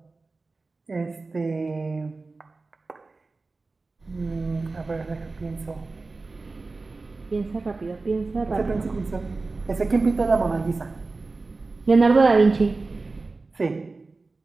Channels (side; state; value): left; quieter; 3.7 dB